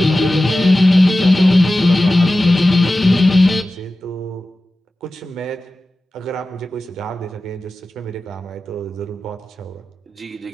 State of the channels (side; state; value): both; normal; correlation 0.95